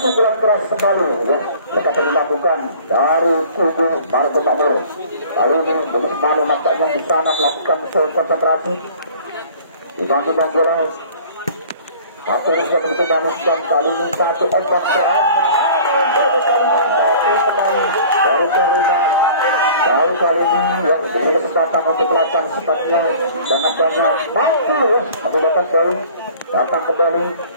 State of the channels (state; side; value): inverted; both; correlation -0.48